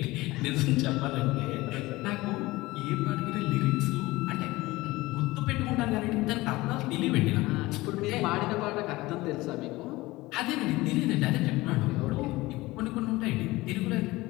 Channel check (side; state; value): right; quieter; 19.9 dB